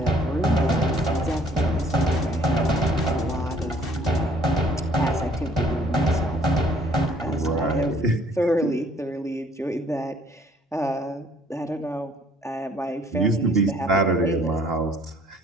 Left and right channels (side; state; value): both; normal; correlation 0.59